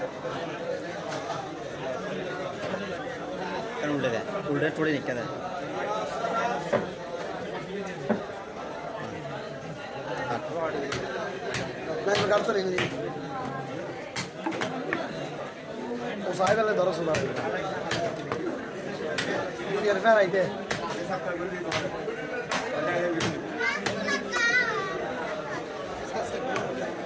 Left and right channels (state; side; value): identical; both; correlation 1.00